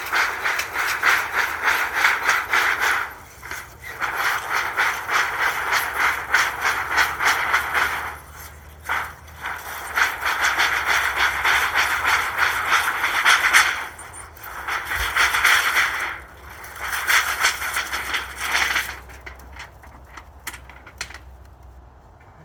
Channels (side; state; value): both; identical; correlation 1.00